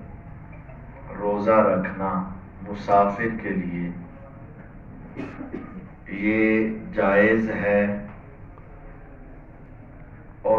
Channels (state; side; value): identical; both; correlation 1.00